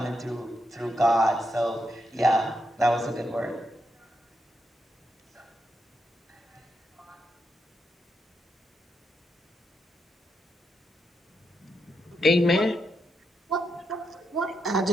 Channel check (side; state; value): both; normal; correlation 0.82